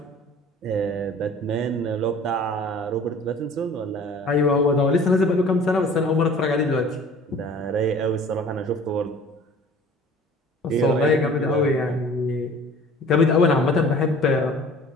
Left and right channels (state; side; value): normal; both; correlation 0.47